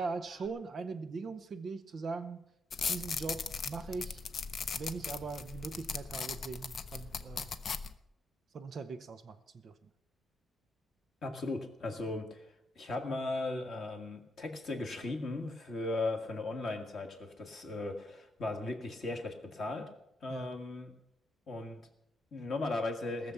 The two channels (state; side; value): normal; both; correlation 0.79